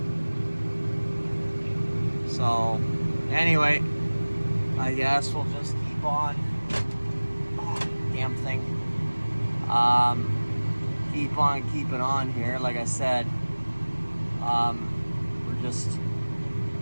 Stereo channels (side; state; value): both; inverted; correlation -1.00